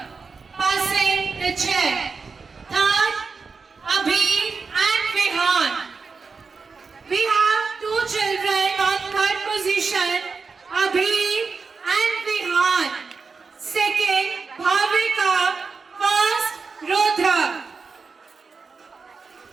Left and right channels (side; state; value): left; quieter; 4.8 dB